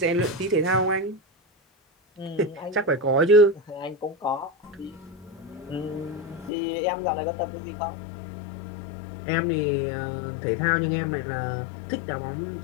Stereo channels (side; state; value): right; drops out; at 6.5 s